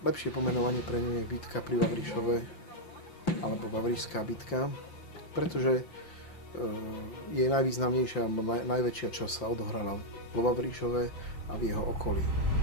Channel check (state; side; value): late; right; 5.8 ms